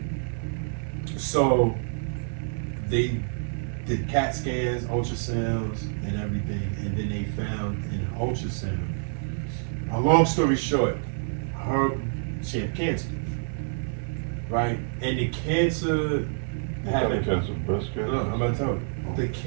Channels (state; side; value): silent; left; digital silence